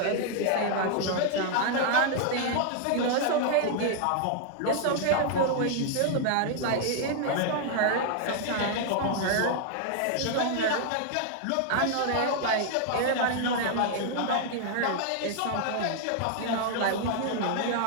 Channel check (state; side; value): different; both; correlation 0.00